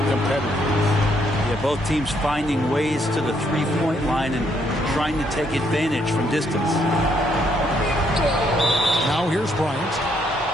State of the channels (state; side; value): normal; both; correlation 0.72